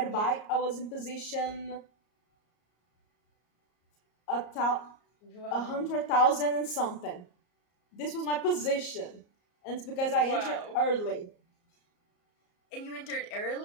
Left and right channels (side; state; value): right; late; 34 ms